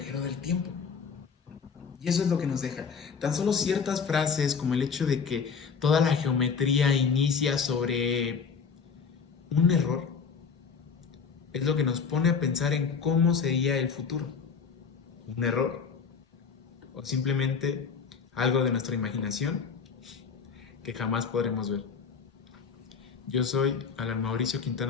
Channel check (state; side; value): quieter; right; 5.9 dB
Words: del tiempo. Y eso es lo que nos deja. Tan solo ciertas frases como el hecho de que toda la geometría inicia sobre un error es lo que nos pone a pensar en cómo sería el futuro. ¿Un error? ¿O simplemente algo de nuestra imaginación que jamás podremos ver? Yo soy Alan Mauricio